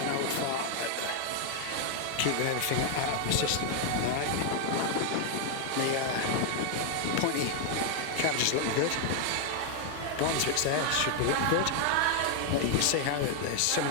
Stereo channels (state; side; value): different; both; correlation 0.00